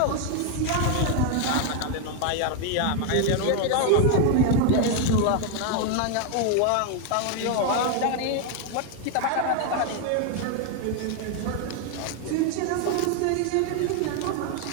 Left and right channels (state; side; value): different; both; correlation 0.01